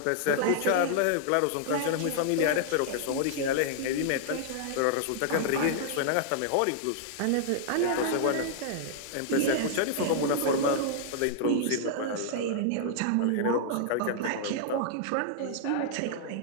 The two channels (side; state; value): both; different; correlation -0.01